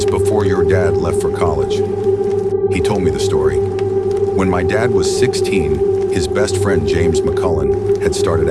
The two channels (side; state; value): right; noise; hum, 25 dB below the sound